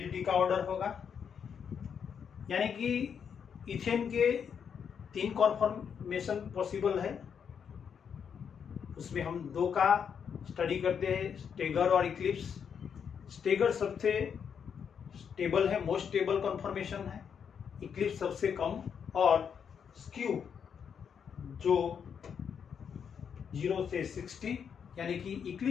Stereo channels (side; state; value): right; quieter; 7.3 dB